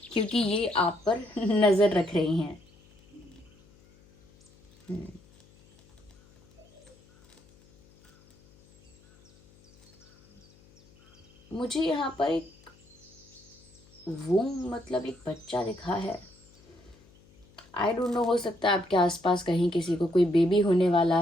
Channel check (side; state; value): left; noise; hum, 28 dB below the sound